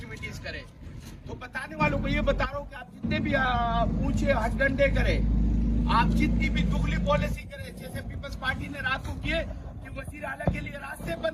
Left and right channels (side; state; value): both; identical; correlation 1.00